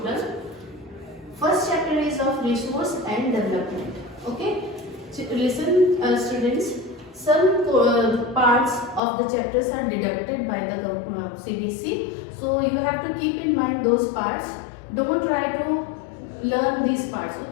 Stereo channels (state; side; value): drops out; right; at 9.0 s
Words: First chapter is of resource and development. Okay, listen, students. Some parts of the chapters are deducted by the CBC, so you have to keep in mind those parts. Don't try to learn these parts.